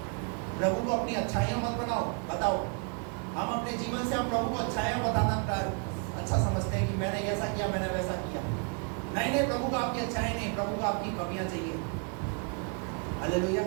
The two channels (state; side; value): quieter; left; 38.3 dB